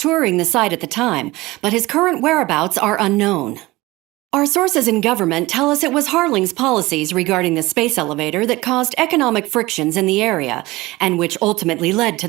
the site at the time, but his current whereabouts are unknown. Our sources in government tell us it was Harling's policies regarding the space elevator that caused economic frictions in the area, and which ultimately led to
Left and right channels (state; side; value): quieter; left; 20.1 dB